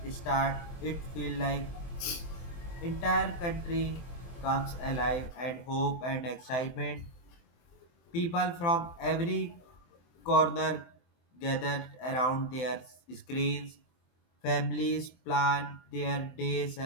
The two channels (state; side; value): late; right; 23 ms